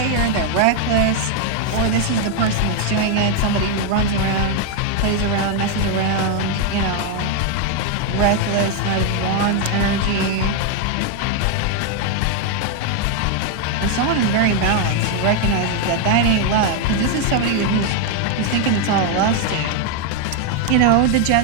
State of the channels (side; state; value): both; different; correlation 0.01